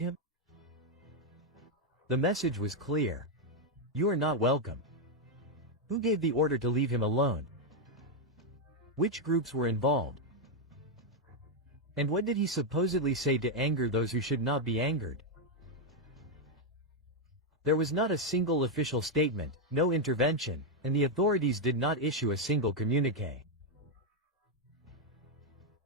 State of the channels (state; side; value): normal; both; correlation 0.01